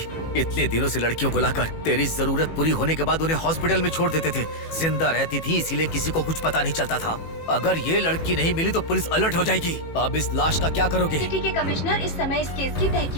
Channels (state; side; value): late; right; 18 ms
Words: इतने दिनों से लड़कियों को लाकर तेरी जरूरत पूरी होने के बाद उन्हें हॉस्पिटल में छोड़ देते थे। जिंदा रहती थी इसीलिए किसी को कुछ पता नहीं चलता था। अगर ये लड़की नहीं मिली तो पुलिस अलर्ट हो जाएगी। अब इस लाश का क्या करोगे? सिटी के कमिश्नर इस समय इस केस की